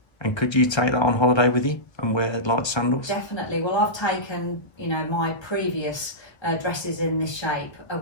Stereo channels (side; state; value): right; late; 1.3 ms